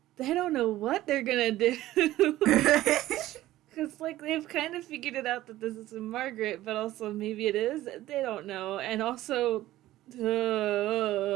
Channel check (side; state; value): left; quieter; 15.3 dB